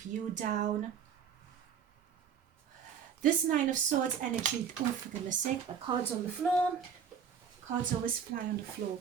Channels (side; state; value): left; quieter; 7.4 dB